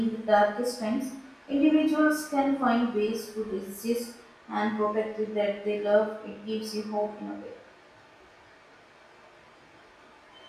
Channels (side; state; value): both; identical; correlation 1.00